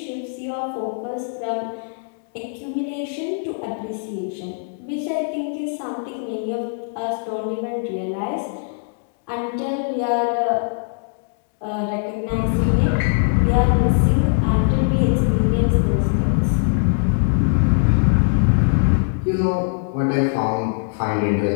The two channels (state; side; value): silent; right; digital silence